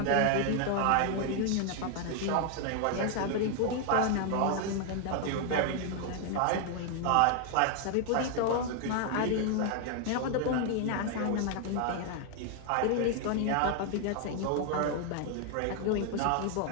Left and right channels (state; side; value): different; both; correlation 0.00